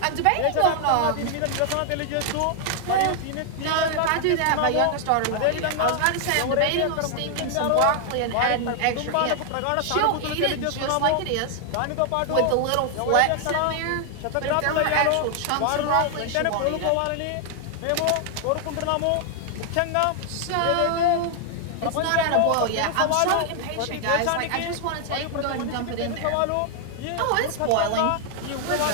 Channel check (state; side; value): different; both; correlation 0.00